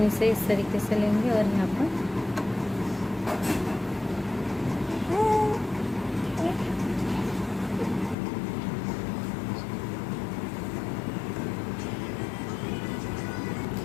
इसे इस तरीके से लेंगे और यहाँ पर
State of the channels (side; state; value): right; drops out; at 8.2 s